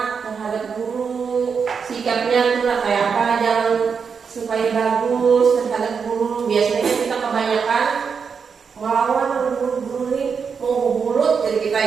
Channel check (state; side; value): quieter; left; 6.0 dB